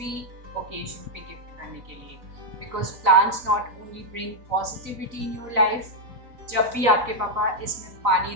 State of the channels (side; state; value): left; late; 3.9 ms